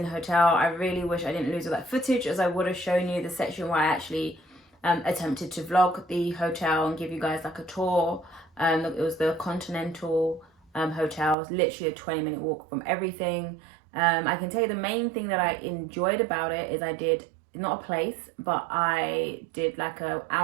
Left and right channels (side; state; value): left; drops out; at 11.4 s